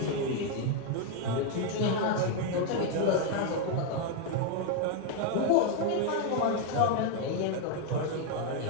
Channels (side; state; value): both; different; correlation 0.01